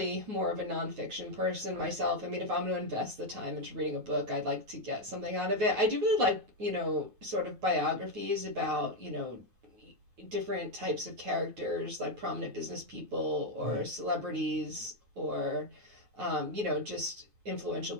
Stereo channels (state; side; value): late; left; 9.4 ms